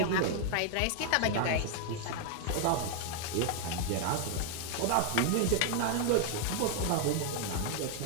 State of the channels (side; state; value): both; different; correlation 0.00